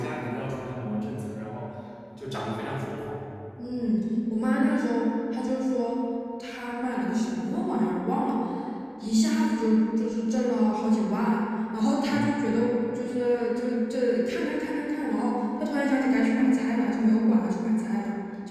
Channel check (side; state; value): both; identical; correlation 1.00